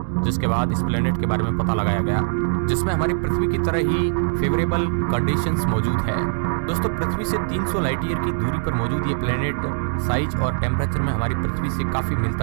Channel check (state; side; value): silent; left; digital silence